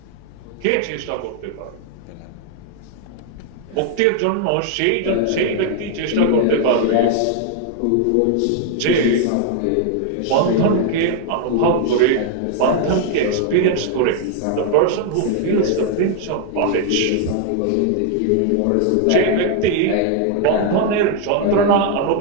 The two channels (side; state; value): both; different; correlation 0.00